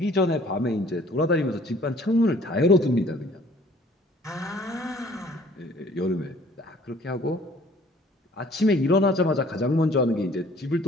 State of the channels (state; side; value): normal; both; correlation 0.55